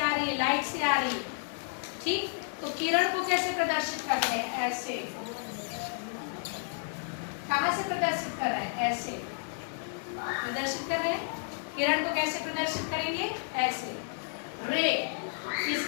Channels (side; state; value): right; silent; 57 dB below the other